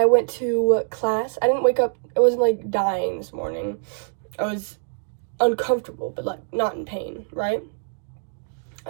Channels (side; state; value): left; silent; digital silence